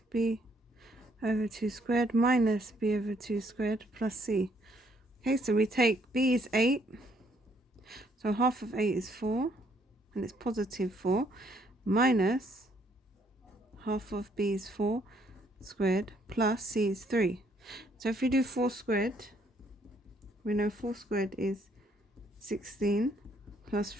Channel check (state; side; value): normal; both; correlation 0.68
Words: b over 2 squared minus b over 2 squared plus c. Okay, so we take b is 8. So half of 8 is 4, and it's positive 4, minus half of b is 4 squared plus c is 3. So if we do 4 squared, we know 4 squared is 16 plus